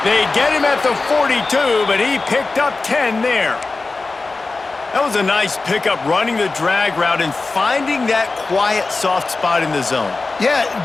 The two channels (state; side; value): quieter; right; 3.7 dB